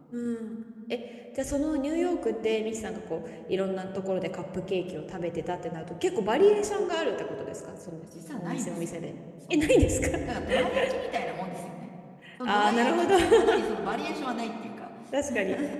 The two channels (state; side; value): identical; both; correlation 1.00